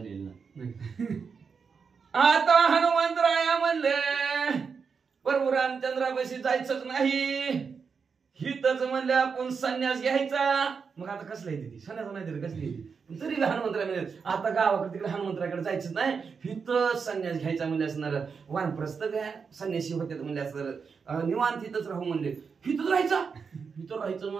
आता हनुमंतराया म्हणले प्रभू रामचंद्रापाशी जायचंच नाही, हितच म्हणले आपण संन्यास घ्यायचा. मग आता कसला येते ती संन्यास नाही तरी कसली येते. तरी हनुमंतराय म्हणजे आता गावाकडे तिकडे हनुमंतराकडे जायचंच नाही, हिथं संन्यास घ्यायचा म्हणजे असणार. वानप्रस्थ घ्या संन्यासी होते म्हणजे असणार. निवांत हिथंच राहू म्हणले. हिथंच राहायचा, हिथं राहायचं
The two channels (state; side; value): quieter; left; 5.7 dB